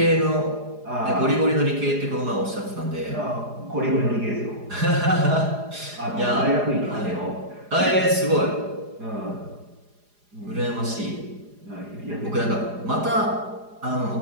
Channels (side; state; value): left; late; 4.9 ms